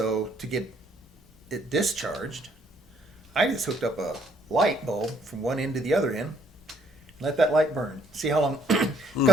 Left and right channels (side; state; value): both; normal; correlation 0.64